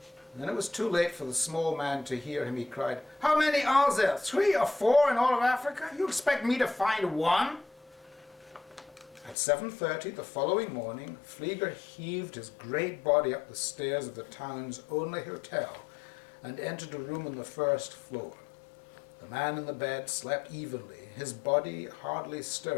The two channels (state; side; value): drops out; right; at 9.3 s